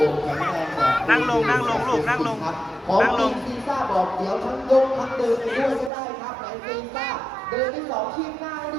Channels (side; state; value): left; drops out; at 5.9 s